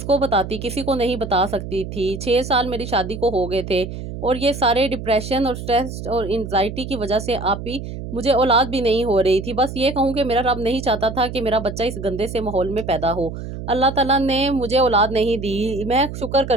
کو بتاتی، کسی کو نہیں بتا سکتی تھی۔ 6 سال میری شادی کو ہو گئے تھے اور یہ سارے ڈپریشن اور سٹریس اور انزائٹی کی وجہ سے آپ ہی مجھے اولاد بھی نہیں ہو رہی تھی۔ بس یہ کہوں کہ میرا رب نہیں چاہتا تھا کہ میرا بچہ اس گندے سے ماحول میں پیدا ہو۔ اللہ تعالیٰ نے مجھے اولاد نہیں دی، میں شکر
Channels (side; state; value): right; noise; hum, 8 dB below the sound